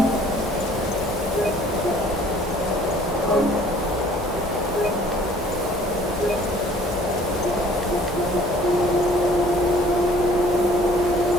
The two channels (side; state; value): both; normal; correlation 0.54